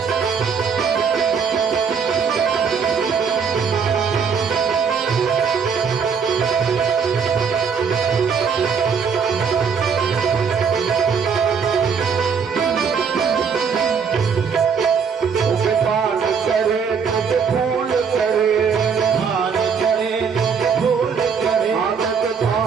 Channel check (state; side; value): quieter; left; 6.3 dB